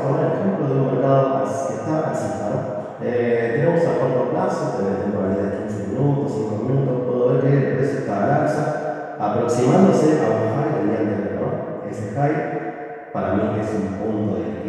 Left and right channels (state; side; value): identical; both; correlation 1.00